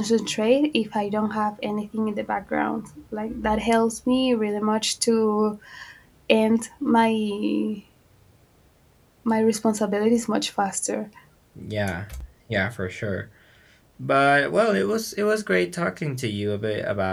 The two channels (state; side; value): identical; both; correlation 1.00